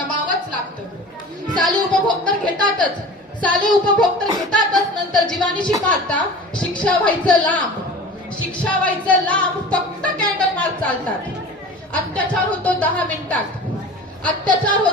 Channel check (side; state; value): both; normal; correlation 0.38